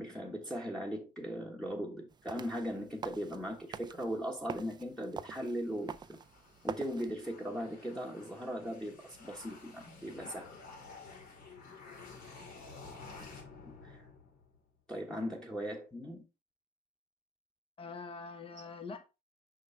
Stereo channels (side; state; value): both; normal; correlation 0.76